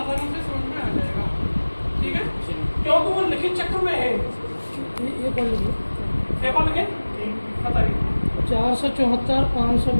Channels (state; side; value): inverted; both; correlation -1.00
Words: से समझ में आ जाएगा। ठीक है, क्योंकि वो लिखित चक्र में है। ये कौन लिखे? पेपर लिखे बताइए। 474